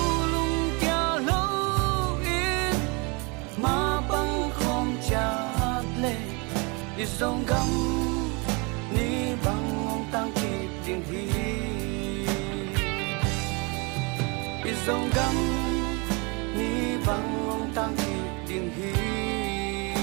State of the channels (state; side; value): quieter; left; 30.1 dB